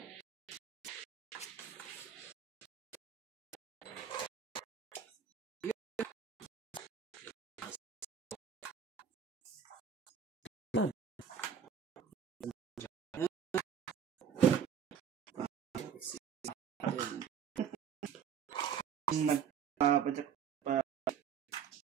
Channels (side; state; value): left; quieter; 7.7 dB